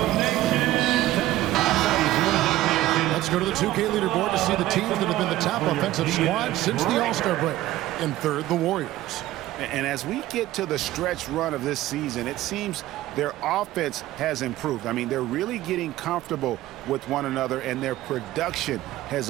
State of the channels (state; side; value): quieter; left; 15.4 dB